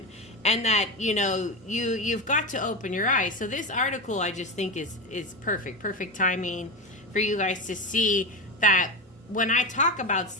And that, you know, you've got to open your eyes. So this article I just think is perfect timing for you guys to see that when I talk about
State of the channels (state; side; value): normal; both; correlation 0.19